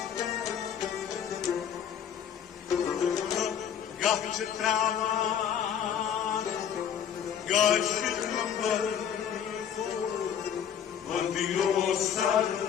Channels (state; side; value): quieter; right; 8.7 dB